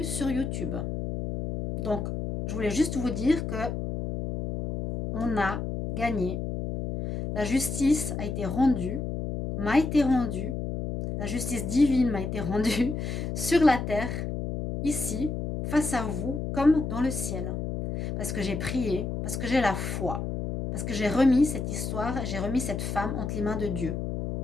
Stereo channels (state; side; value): noise; left; hum, 4 dB below the sound